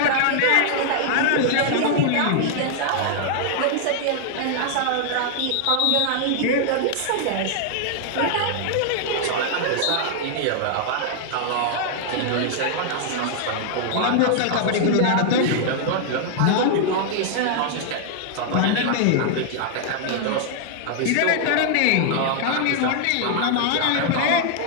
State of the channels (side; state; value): both; different; correlation 0.00